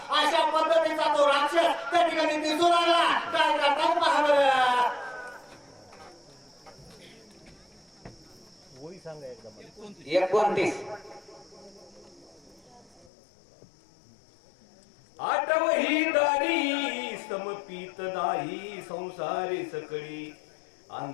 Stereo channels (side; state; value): right; drops out; at 13.1 s